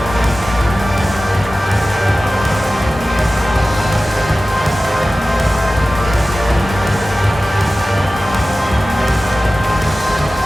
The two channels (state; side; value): normal; both; correlation 0.96